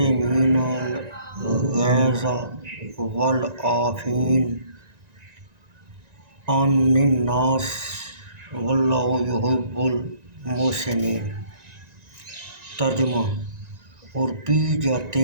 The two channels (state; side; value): late; left; 1.9 ms